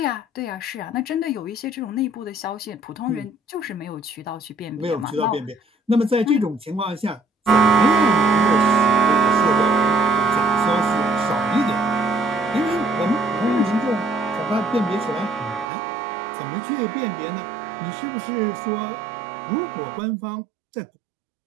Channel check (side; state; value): left; drops out; at 15.7 s